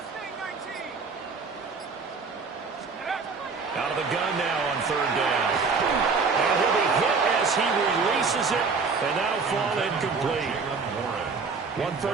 Out of the gun now on third down. And he'll be hit as he releases it, and that'll fall incomplete. One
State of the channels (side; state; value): left; quieter; 4.7 dB